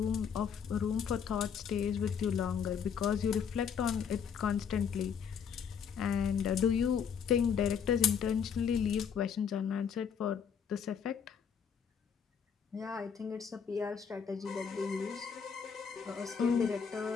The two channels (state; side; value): quieter; right; 7.1 dB